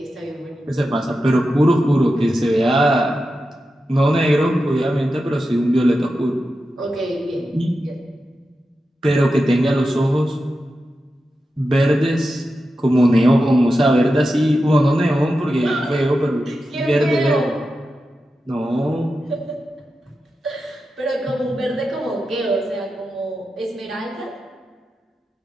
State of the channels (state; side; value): normal; both; correlation 0.91